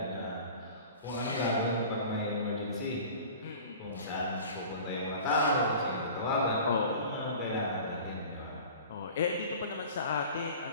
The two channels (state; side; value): inverted; both; correlation -0.41